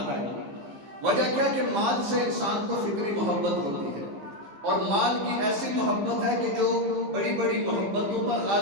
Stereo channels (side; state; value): left; late; 15 ms